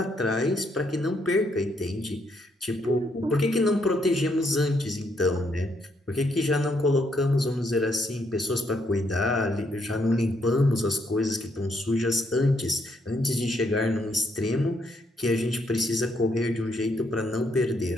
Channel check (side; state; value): both; normal; correlation 0.74